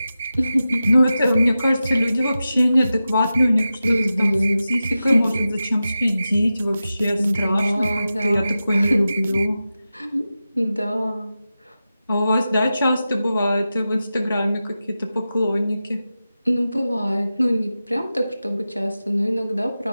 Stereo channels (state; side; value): inverted; both; correlation -0.93